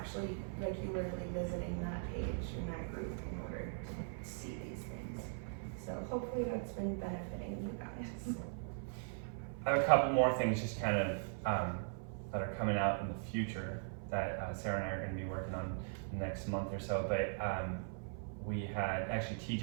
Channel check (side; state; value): left; silent; 51 dB below the other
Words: regularly visiting that page and that group in order to see these things. So hopefully that's been benefiting you guys. I have a couple more things just kind of that are coming out in the future. that Sarah and I are going to be working on next month or so. But we had actually